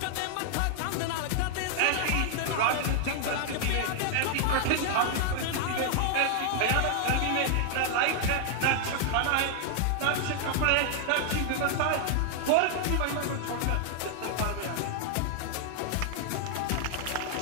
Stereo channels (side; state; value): both; different; correlation 0.00